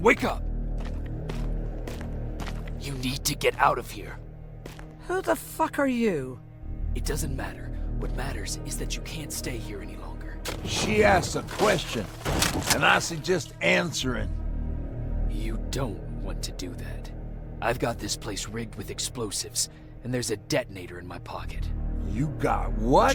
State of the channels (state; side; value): identical; both; correlation 1.00